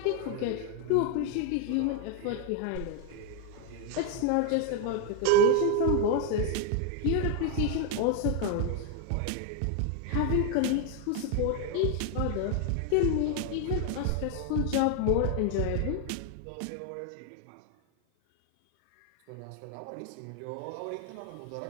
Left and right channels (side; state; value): both; different; correlation 0.01